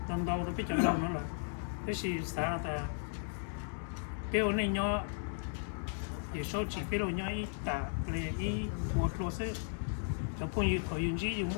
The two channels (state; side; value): silent; right; digital silence